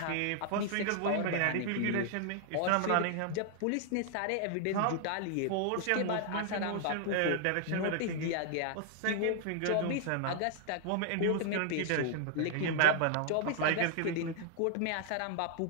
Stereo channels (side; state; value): both; different; correlation 0.00